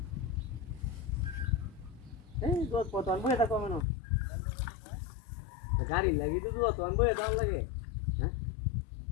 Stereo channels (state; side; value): drops out; right; at 3.9 s